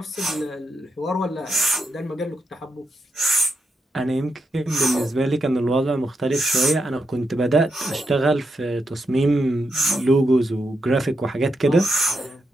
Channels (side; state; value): both; normal; correlation 0.85